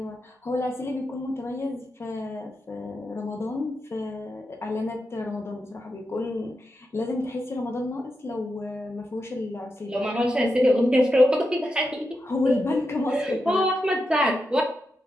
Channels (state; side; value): normal; both; correlation 0.87